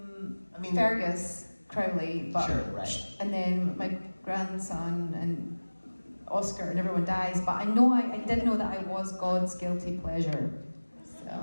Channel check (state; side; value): inverted; both; correlation -1.00